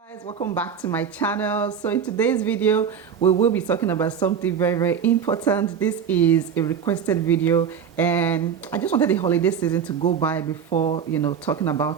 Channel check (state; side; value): quieter; left; 7.5 dB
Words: Guys, welcome back to my channel. So in today's video we will be talking about something very important. This is a requested video and I just wanted the holiday season to go by before talking